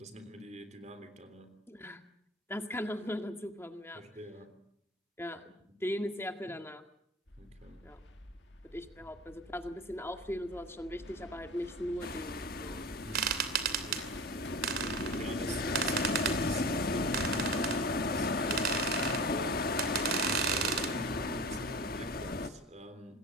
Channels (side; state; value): both; normal; correlation 0.32